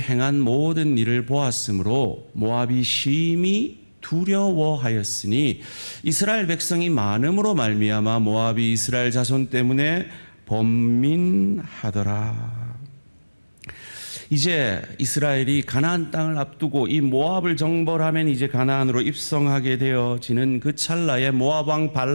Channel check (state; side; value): inverted; both; correlation -1.00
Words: 모든 일을 보았으므로 모압이 심히 두려워하였으니 이스라엘 백성이 많음으로 말미암아 모압이 이스라엘 자손 때문에 번민하더라. 이제 이스라엘이 가나안 땅을 앞두고 이 모압을 정벌하면 이제 가나안으로 입성하게 되어지는 그 찰나에 모압 왕